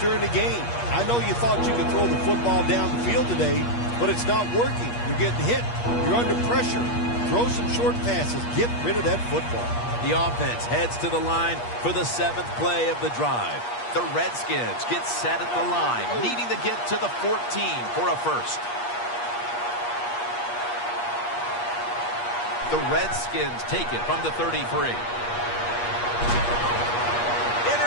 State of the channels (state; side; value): late; right; 8.4 ms